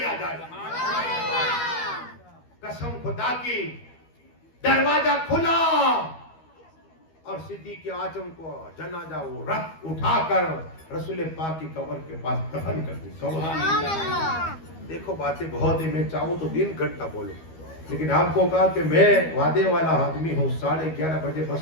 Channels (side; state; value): right; late; 12 ms